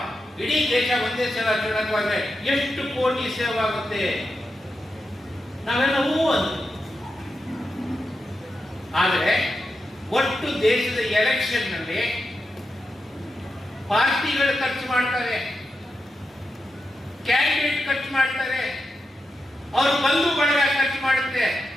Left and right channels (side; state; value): both; normal; correlation 0.88